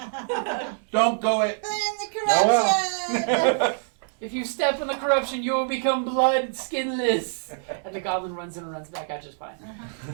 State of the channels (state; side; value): silent; left; 62 dB below the other